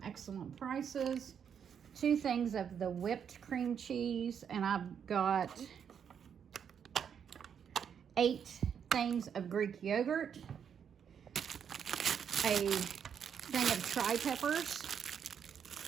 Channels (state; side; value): quieter; left; 7.8 dB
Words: excellent prices. 2 things of the whipped cream cheese, and I've got 8 things of Greek yogurt, a thing of tri-peppers,